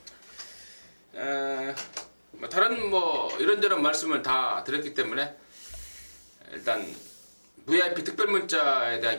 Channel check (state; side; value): inverted; both; correlation -1.00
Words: 다른 이런저런 말씀을 다 드렸기 때문에 일단 VIP 특별 문자에 대한